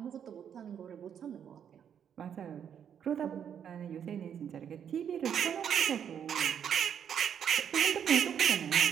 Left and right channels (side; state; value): left; quieter; 8.5 dB